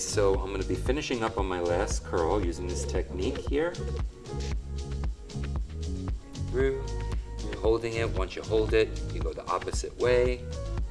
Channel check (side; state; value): both; identical; correlation 1.00